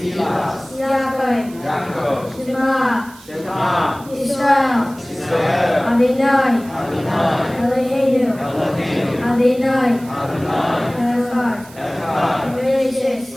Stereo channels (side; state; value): right; noise; hiss, 22 dB below the sound